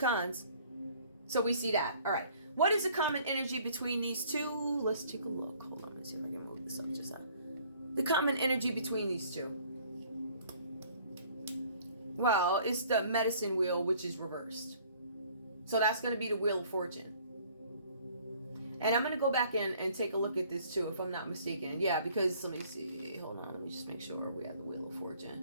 So we see that. All right. What is the common energy between these two? Let's take a look. Hold on. Let's see if I can move this up just the common energy between these two. Well, it's the medicine wheel, which is reversed. So that's going to be the Wheel of Fortune. And I'm going to go back in and take a look at this too, if I'm not mistaken. Yeah, because let me see. Hold on. Let me just make sure we have the Wheel of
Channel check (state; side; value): inverted; both; correlation -0.56